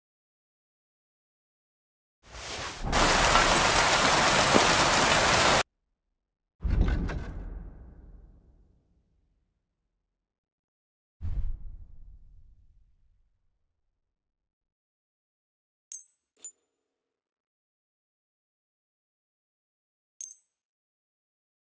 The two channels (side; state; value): both; identical; correlation 1.00